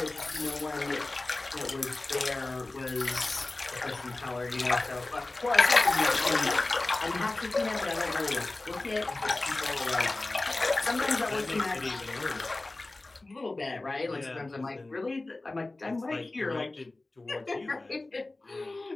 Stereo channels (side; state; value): right; quieter; 3.0 dB